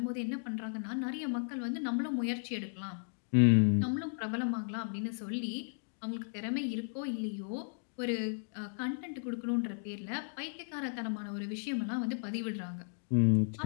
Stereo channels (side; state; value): right; silent; digital silence